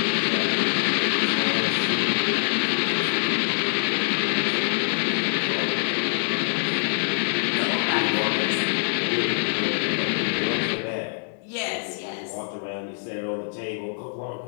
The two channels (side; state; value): right; silent; digital silence